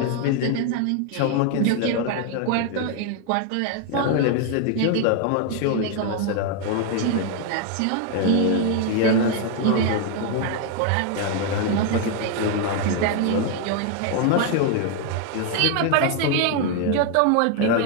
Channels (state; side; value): different; both; correlation 0.00